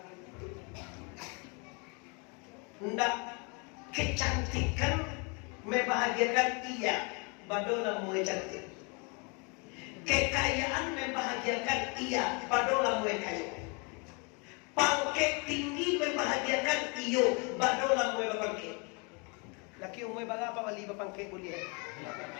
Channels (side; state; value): right; quieter; 32.5 dB